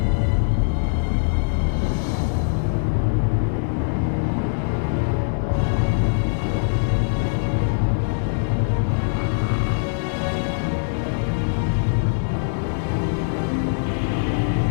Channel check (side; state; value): right; silent; digital silence